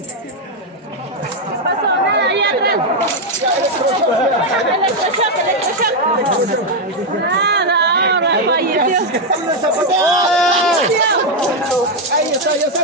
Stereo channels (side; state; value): both; normal; correlation 0.02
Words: ¿Qué pasó? Nada, ahí atrás. Electroshock. Nada, ahora falleció. Ahí está, ya está